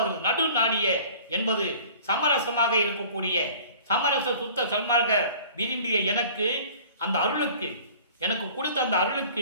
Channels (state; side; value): inverted; both; correlation -0.46